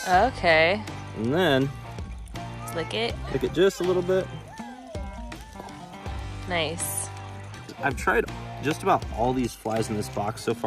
Okay. And then Lick it. lick it just a little bit. Nice. I've tried just about all these flies in this box so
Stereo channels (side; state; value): both; identical; correlation 1.00